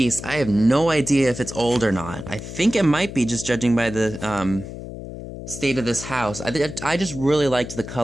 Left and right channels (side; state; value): left; noise; hum, 11 dB below the sound